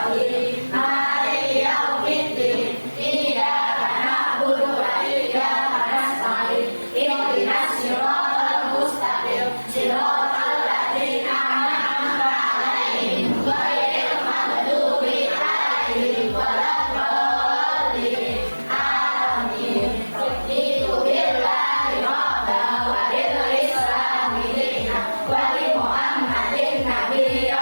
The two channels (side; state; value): both; inverted; correlation -1.00